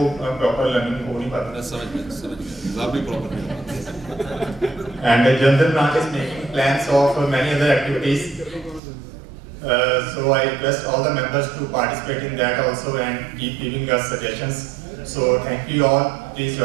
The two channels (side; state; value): left; drops out; at 8.8 s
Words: proper learning हो नहीं पाता. समझ गया एग्जाम भी प्रॉपर नहीं. And the general branch is making plans of many other activities. So I request all the members to participate in that also and keep giving us suggestions. So thank you all. Please